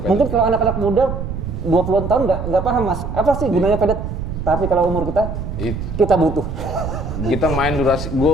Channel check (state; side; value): noise; right; rumble, 5 dB below the sound